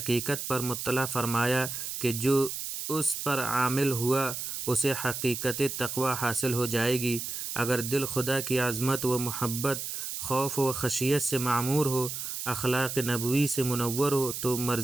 پر مطلع فرمایا کہ جو اس پر عامل ہوا اسے حقیقت تقوی حاصل ہو جائے گی۔ اگر دل خدا کی عظمت و محبت، خوف و خشیت سے معمور ہو، اخلاق نبوی سے منور ہو تو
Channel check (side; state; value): right; noise; hiss, 5 dB below the sound